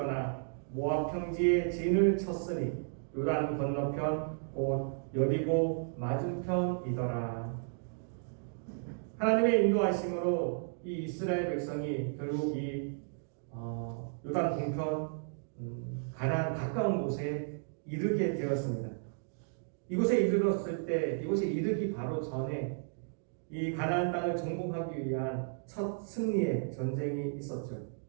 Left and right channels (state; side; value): silent; left; digital silence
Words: 모압 평지에 진을 쳤으니 요단 건너편 곧 여리고 맞은편이더라. 하나님의 인도하심으로 이 이스라엘 백성이 결국 이 요단 동편 가나안 가까운 곳에 이르게 되었습니다. 이곳에 이르렀을 때 이곳에 이르기 바로 전에 이 가나안 땅을 정복하기 위한 첫 승리의 전쟁이 있었죠.